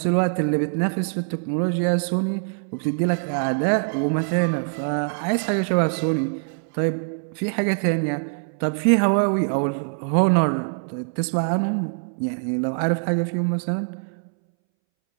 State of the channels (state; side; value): silent; left; 63 dB below the other